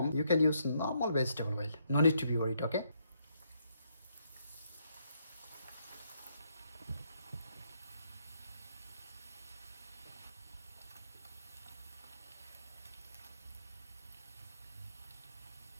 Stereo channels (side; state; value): both; inverted; correlation -0.74